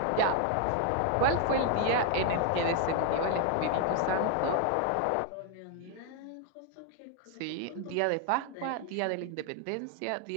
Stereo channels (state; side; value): different; both; correlation 0.00